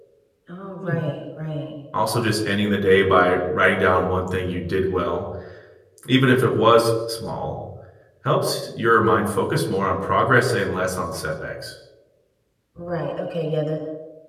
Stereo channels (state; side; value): identical; both; correlation 1.00